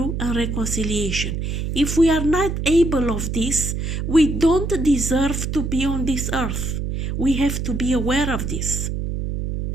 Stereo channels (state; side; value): noise; right; hum, 3 dB below the sound